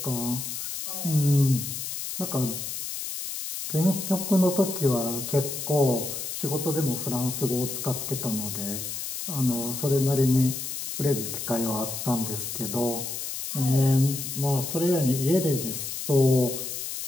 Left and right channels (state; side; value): noise; left; hiss, 5 dB below the sound